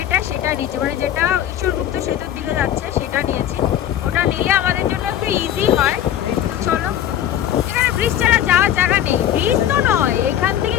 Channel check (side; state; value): right; quieter; 11.2 dB